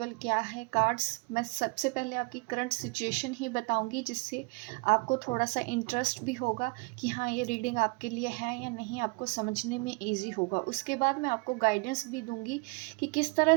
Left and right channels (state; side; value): quieter; left; 28.0 dB